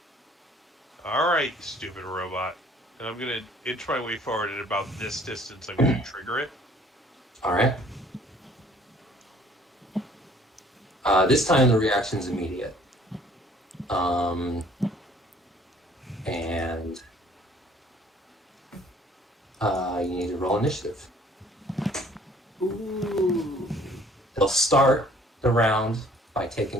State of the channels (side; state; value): both; normal; correlation 0.57